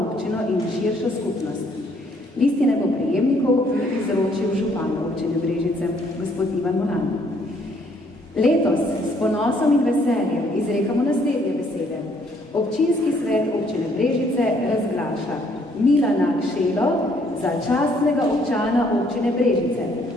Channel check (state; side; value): normal; both; correlation 0.66